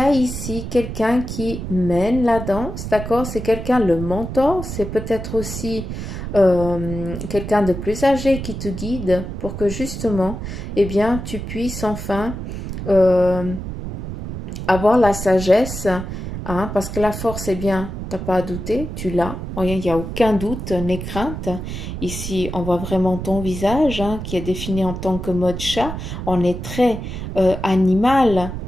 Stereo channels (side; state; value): right; noise; rumble, 7 dB below the sound